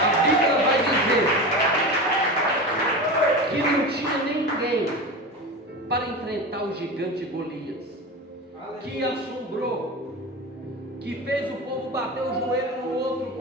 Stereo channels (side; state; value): both; normal; correlation 0.26